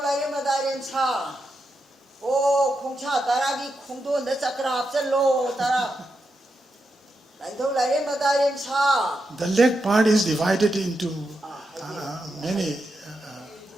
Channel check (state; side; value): normal; both; correlation 0.85